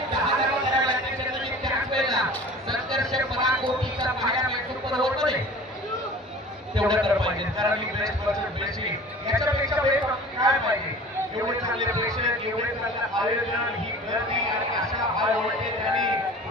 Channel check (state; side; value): normal; both; correlation 0.43